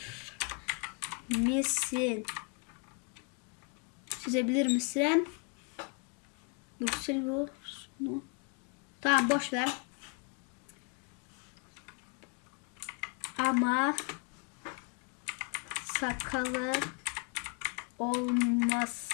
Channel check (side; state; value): right; quieter; 36.9 dB